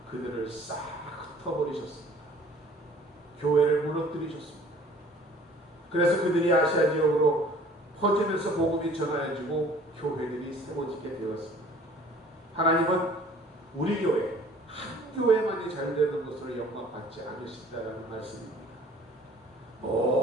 그들을 싹 흩어버리셨습니다. 교회를 무너뜨리셨습니다. 그래서 그들이 아시아 지역으로 퍼지면서 복음이 전하여지고 교회들이 세워지게 되었습니다. 하나님은 우리 교회, 한 교회만이 잘 되는 것으로 영광받지 않으신다는 말씀입니다.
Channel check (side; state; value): both; normal; correlation 0.52